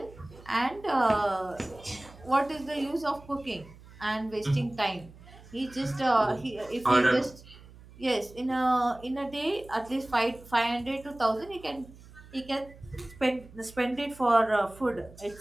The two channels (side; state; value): right; noise; hum, 21 dB below the sound